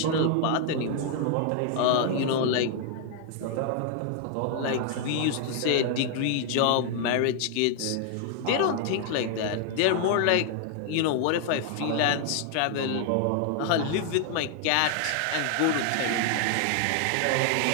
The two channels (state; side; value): different; both; correlation 0.00